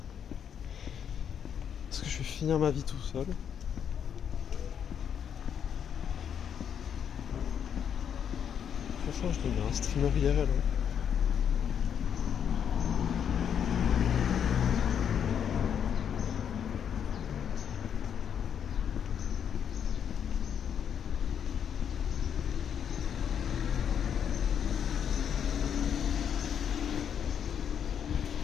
Est-ce que je vais finir ma vie tout seul? Franchement, je deviens un streamer IRL. Hein.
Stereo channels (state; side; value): quieter; right; 8.3 dB